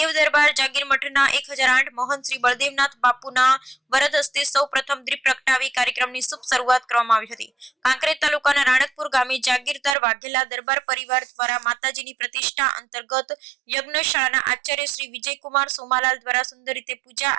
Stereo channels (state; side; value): drops out; left; at 10.0 s